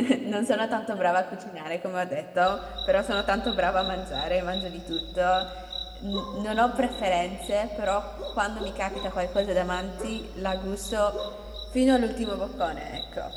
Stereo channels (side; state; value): both; identical; correlation 1.00